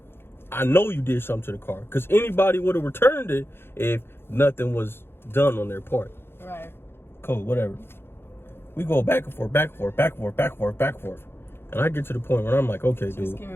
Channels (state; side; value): late; right; 0.11 ms